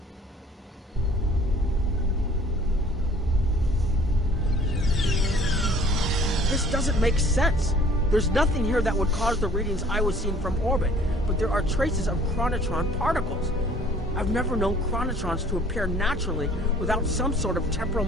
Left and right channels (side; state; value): both; normal; correlation 0.53